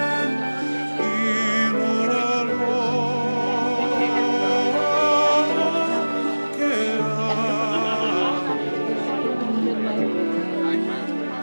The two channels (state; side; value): inverted; both; correlation -1.00